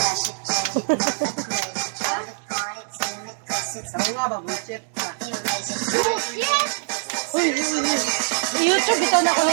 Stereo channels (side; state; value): left; silent; digital silence